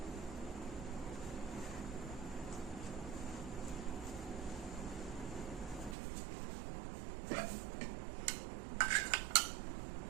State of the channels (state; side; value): drops out; left; at 6.0 s